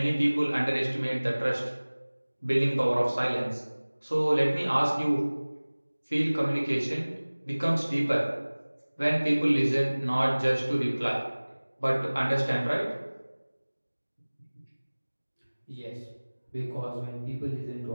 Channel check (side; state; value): both; inverted; correlation -1.00